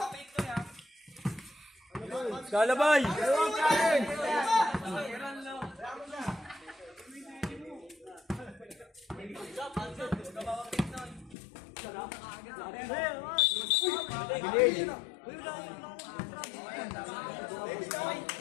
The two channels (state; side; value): drops out; right; at 11.4 s